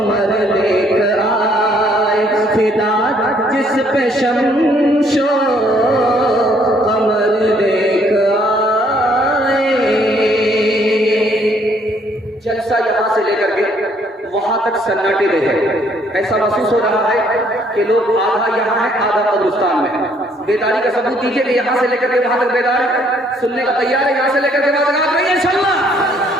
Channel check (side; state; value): both; normal; correlation 0.65